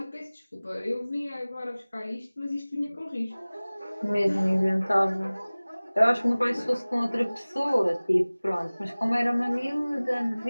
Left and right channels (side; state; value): both; inverted; correlation -0.99